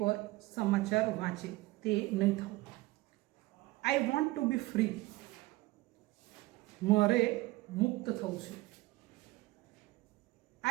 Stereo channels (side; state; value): left; quieter; 20.0 dB